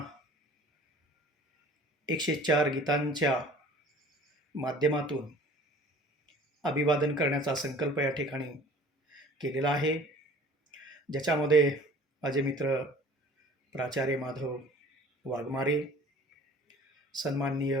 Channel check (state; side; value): normal; both; correlation 0.48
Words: 104 गीतांच्या माध्यमातून अभिवादन करण्याचा संकल्प या ठिकाणी केलेला आहे, ज्याच्यामध्ये माझे मित्र प्राचार्य माधव वाघमारे, सन्माननीय